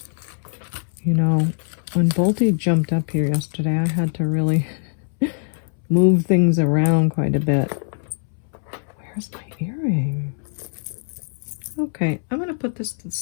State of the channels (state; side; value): silent; right; 64 dB below the other